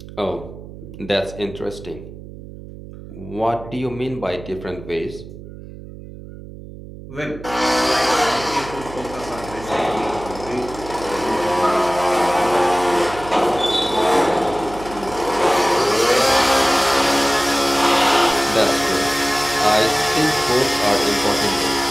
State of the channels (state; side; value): noise; right; hum, 15 dB below the sound